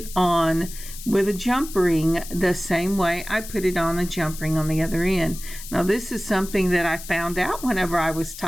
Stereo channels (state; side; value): noise; left; hiss, 13 dB below the sound